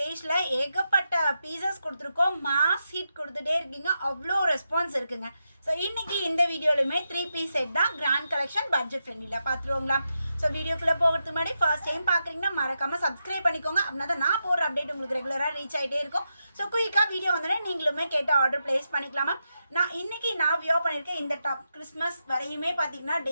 ஏகப்பட்ட பீசஸ் கொடுத்துருக்கோம். மாஸ் ஹிட் கொடுத்துட்டே இருக்கீங்க, அவ்வளோ ரெஸ்பான்ஸ் இருக்குங்க. ஸோ இன்னைக்கு இந்த வீடியோலுமே 3 பீஸ் செட் தான், கிராண்ட் கலெக்ஷன், பட்ஜெட் ஃப்ரெண்ட்லியில் பார்த்துருவோங்களா. ஸோ வீடியோக்குள்ளே போகிறதுக்கு முன்னாடி ஃபர்ஸ்ட் டைம் பார்க்குறீங்கன்னா மறக்காமல் சப்ஸ்கிரைப் பண்ணிக்கோங்க. அப்படின்னா தான் நான் போகிற அப்டேட் உங்களுக்கு ரெகுலராக ரீச் ஆகிட்டே இருக்கும். ஸோ குயிக்காக வீடியோ வந்தோடனே நீங்களுமே கேட்ட ஆர்டர் பிளேஸ் பண்ணிக்கலாமா. இன்னைக்கு நான் வியோ பண்ணியிருக்கேன் இந்த டாப். கிறிஸ்மஸ் வரையுமே பார்த்தீங்கன்னா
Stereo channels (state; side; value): inverted; both; correlation -0.87